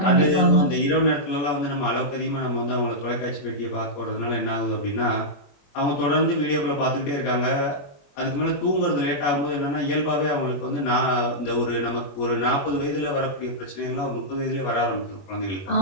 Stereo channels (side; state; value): right; late; 21 ms